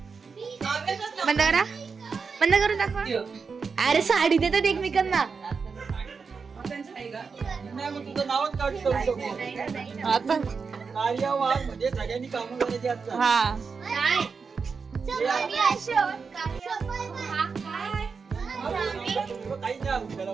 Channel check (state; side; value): quieter; left; 5.2 dB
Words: बंद करा. बंद करून दाखवा. अरे साडी देतात एकमेकांना. तुझं नावच काढू शकतो. आता कार्यवाह म्हणजे सगळ्यांनी कामं करायची असतात. हा काही नाही आपल्याला